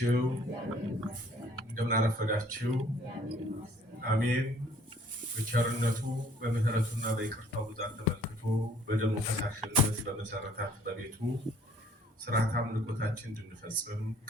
እንደምን አረፈዳችሁ? አሜን። በቸርነቱ በምህረቱና በይቅርታው ብዛት ተመልክቶ በደሙ ፈሳሽነት በመሰረታት በቤቱ ስርዓት አምልኮታችን እንድንፈጽም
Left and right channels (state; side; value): normal; both; correlation 0.58